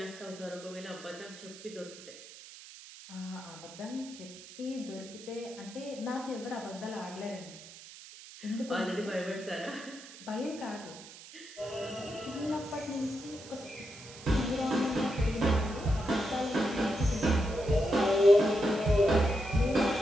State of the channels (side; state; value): right; noise; hiss, 17 dB below the sound